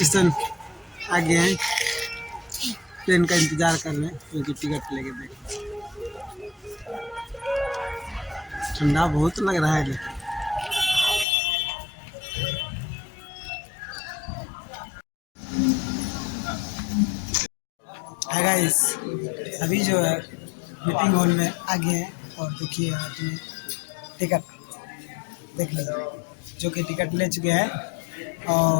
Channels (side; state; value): right; drops out; at 11.2 s